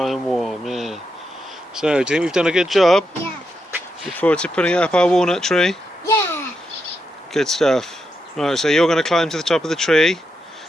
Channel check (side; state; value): both; normal; correlation 0.84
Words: and warm, yeah. So, do you think we've done a good job? Yeah. Look forward to putting it up our walnut tree? Yeah. Good stuff. Right, so you're going to climb to the top of the tree